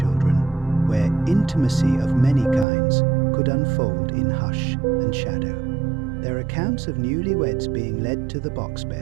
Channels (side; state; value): left; drops out; at 2.7 s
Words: where intimacy of many kinds could unfold in hush and shadow. There are accounts of newlyweds being led to the box